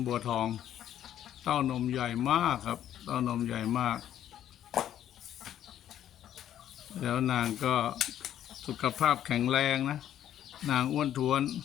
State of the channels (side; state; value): right; quieter; 11.1 dB